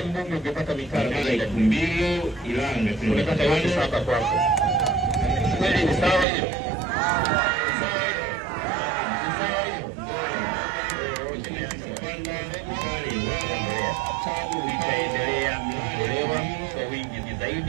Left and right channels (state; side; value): drops out; left; at 6.2 s